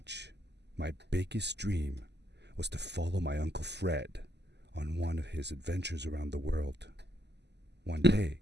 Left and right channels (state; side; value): late; left; 0.50 ms